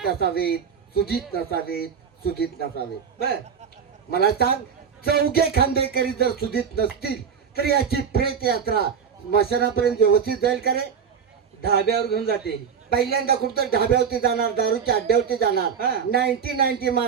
नसावेत, सुधीत नसावेत, सुधीत नसावेत. बर मला सांग, चौघे खांदेकरी जर सुधीत नसतील तर याची प्रेत यात्रा स्मशानापर्यंत व्यवस्थित जाईल का रे? धाब्यावर घेऊन जाते. पहिल्यांदा कुठं ढाब्यावरती जाणार, दारूच्या अड्ड्यावरती जाणार, 90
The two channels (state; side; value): quieter; left; 6.9 dB